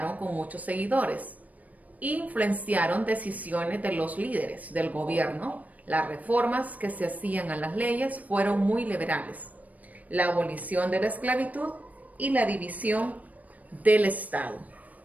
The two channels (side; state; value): left; late; 0.073 ms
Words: con muchos seguidores. Influenciaron decisiones de los líderes del gobierno. Las reformas que se hacían a las leyes fueron muy liberales. La abolición de la esclavitud y la división del Estado.